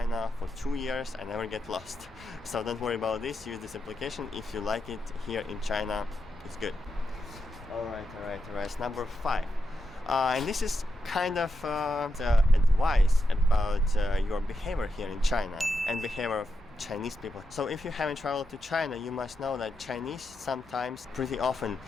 for 2 years. I never get lost. So don't worry about this. Use this application. If you like it here in China, it's good. Alright. Number 5. And this is kind of advice about your behavior here in China and behavior of Chinese people. So if you haven't traveled to China, you must know that Chinese sometimes, pretty often,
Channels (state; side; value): normal; both; correlation 0.86